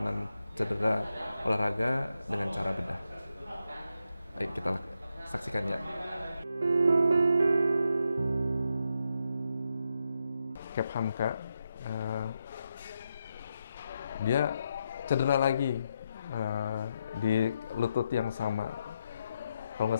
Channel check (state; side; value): inverted; both; correlation -0.83